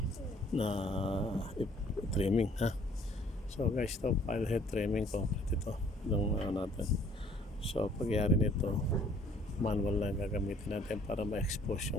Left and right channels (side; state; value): both; normal; correlation 0.58